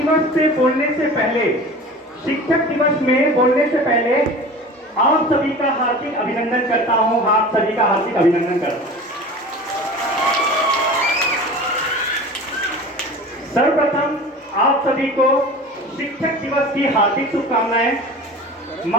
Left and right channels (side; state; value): both; normal; correlation 0.37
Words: से बोलने से पहले, शिक्षक दिवस में बोलने से पहले आप सभी का हार्दिक अभिनंदन करता हूं। आप सभी का हार्दिक अभिनंदन करता हूं। सर्वप्रथम आप सभी को शिक्षक दिवस की हार्दिक शुभकामनाएं।